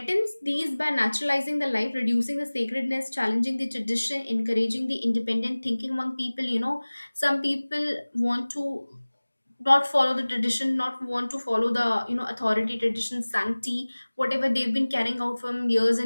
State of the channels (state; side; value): inverted; both; correlation -1.00